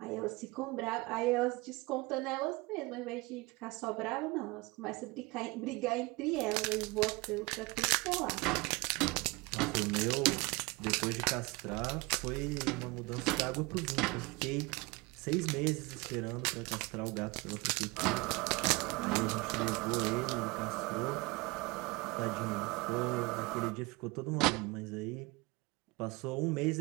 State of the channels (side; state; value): left; quieter; 25.0 dB